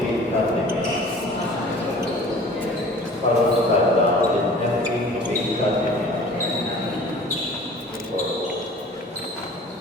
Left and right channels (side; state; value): both; normal; correlation 0.46